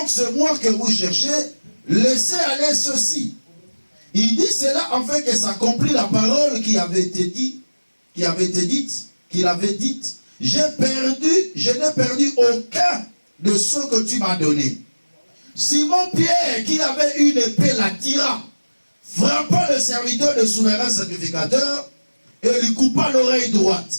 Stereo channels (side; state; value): both; inverted; correlation -1.00